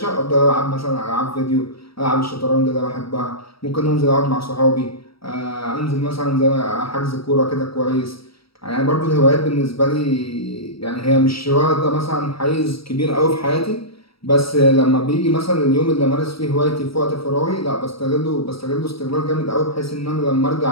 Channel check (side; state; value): right; late; 0.75 ms